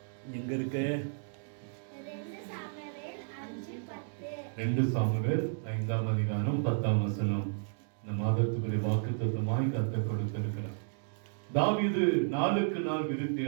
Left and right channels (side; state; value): left; silent; digital silence